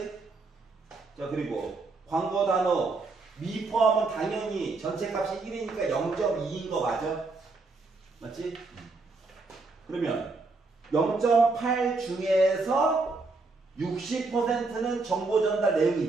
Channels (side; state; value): left; quieter; 3.7 dB